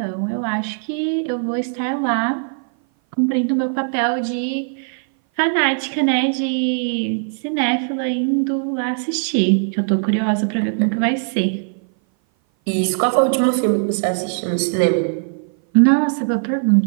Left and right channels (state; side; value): silent; left; 58 dB below the other